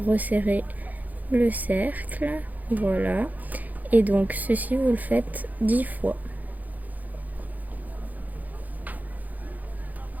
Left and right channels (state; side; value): late; left; 0.081 ms